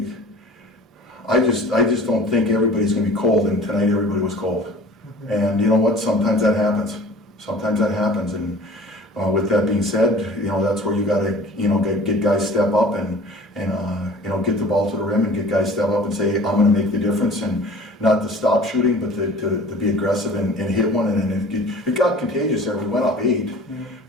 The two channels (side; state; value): both; normal; correlation 0.45